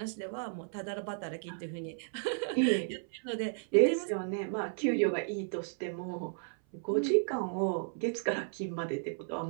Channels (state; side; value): silent; left; 55 dB below the other